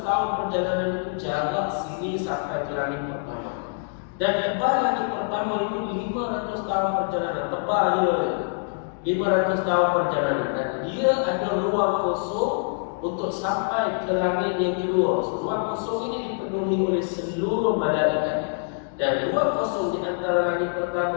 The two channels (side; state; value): right; silent; digital silence